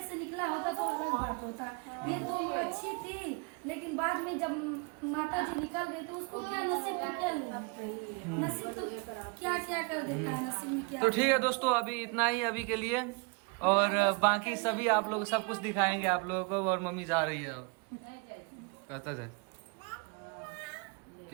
से निकला होता तो अलग बात होता। ये तो अच्छी थी, लेकिन बाद में जब माता जी निकल गई तो उसको क्या नसीब में क्या लेना, नसीब तो क्या क्या कर देता है, नसीब में क्या। तो ठीक है दोस्तों, अभी इतना ही अभी के लिए, और बाकी सभी आप लोग सब कुछ दिखाएंगे आप लोगों को। और मम्मी जा रही है अब, कहता है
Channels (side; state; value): left; quieter; 32.3 dB